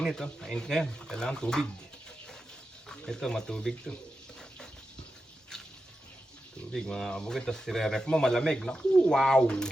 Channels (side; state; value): both; normal; correlation 0.90